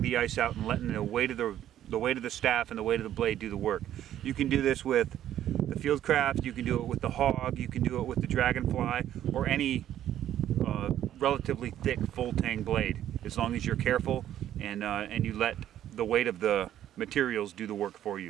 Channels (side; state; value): left; quieter; 11.6 dB